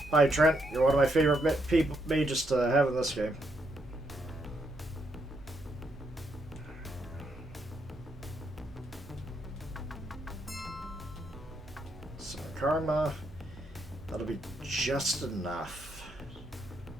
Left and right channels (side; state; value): right; noise; hum, 19 dB below the sound